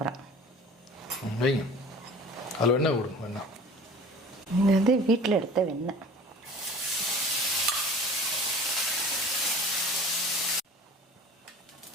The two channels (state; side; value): normal; both; correlation 0.42